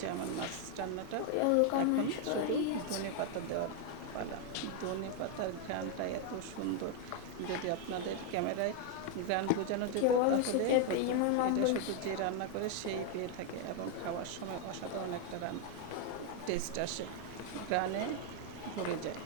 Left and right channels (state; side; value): different; both; correlation 0.01